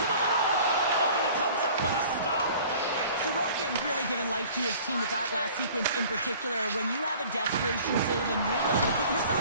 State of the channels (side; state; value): both; inverted; correlation -0.48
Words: given life to his team with that last sequence in particular. When you have a desperation save and you're willing to put